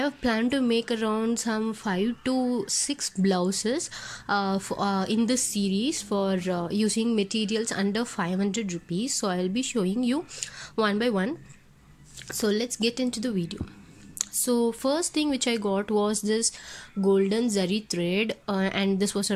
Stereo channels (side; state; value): both; identical; correlation 1.00